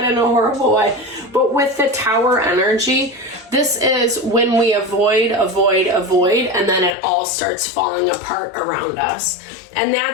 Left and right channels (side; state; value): right; drops out; at 7.0 s